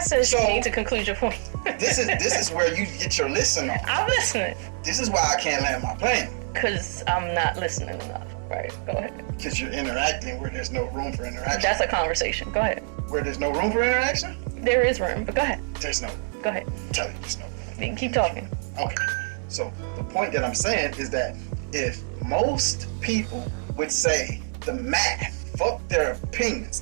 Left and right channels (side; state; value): left; silent; 61 dB below the other